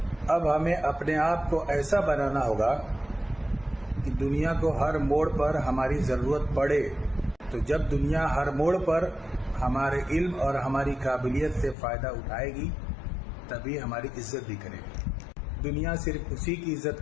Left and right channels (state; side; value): drops out; right; at 11.8 s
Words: अब हमें अपने आप को ऐसा बनाना होगा कि दुनिया को हर मोड़ पर हमारी ज़रूरत पड़े, तो जब दुनिया हर मोड़ पर हमारे इल्म और हमारी काबिलियत से फ़ायदा उठाएगी तभी हमारी इज्जत भी करेगी। दुनिया सिर्फ उसी की इज्जत